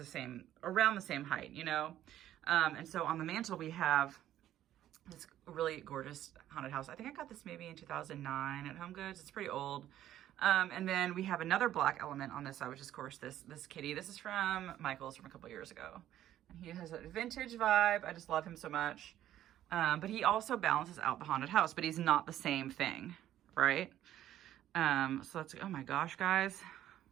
around the same height, you know? And so on the mantle, we have this really gorgeous haunted house. I think I got this maybe in 2009 at Home Goods. It's pretty old. And then we have another black element on this side, which is, of course, this kitty. This is from Michael's from a couple years ago. And he has a vintage vibe. I just love him so much. But he also balances out the haunted house, but he's not the same thing, right? So let's, oh my gosh, guys.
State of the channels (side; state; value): left; quieter; 12.4 dB